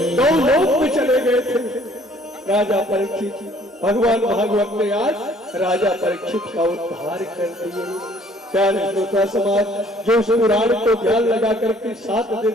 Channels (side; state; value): both; normal; correlation 0.58